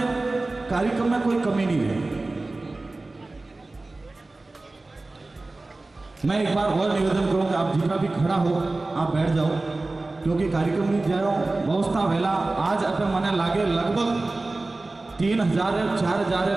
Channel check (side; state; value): left; quieter; 3.1 dB